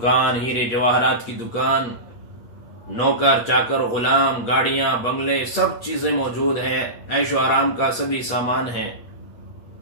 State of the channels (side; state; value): right; late; 8.4 ms